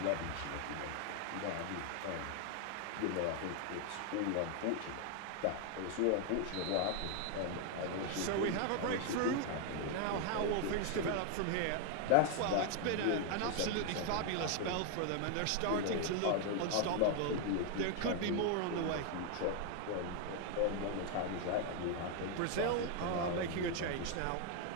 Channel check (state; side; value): different; both; correlation 0.01